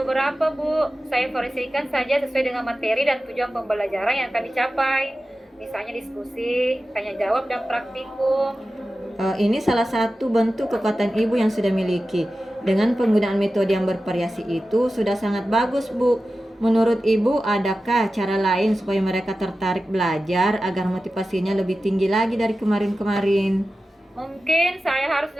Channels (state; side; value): normal; both; correlation 0.94